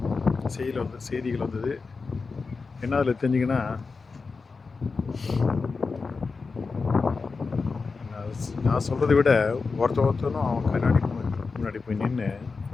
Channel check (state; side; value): quieter; right; 4.5 dB